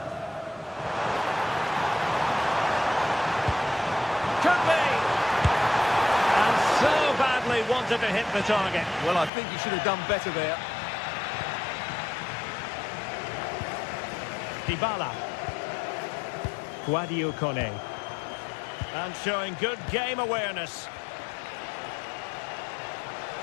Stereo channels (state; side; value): drops out; right; at 9.3 s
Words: Could be! And so badly wanted to hit the target. Well, I think he should have done better there. Dybala. Guadio Kone. And showing good game awareness.